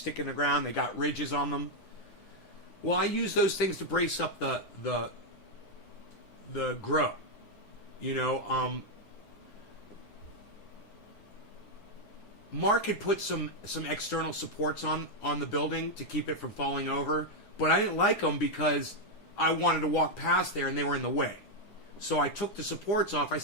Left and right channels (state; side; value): late; right; 9.8 ms